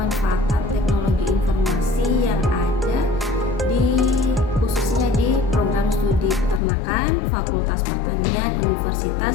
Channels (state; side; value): drops out; right; at 6.6 s